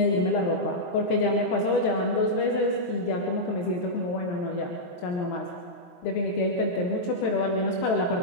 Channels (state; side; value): late; right; 23 ms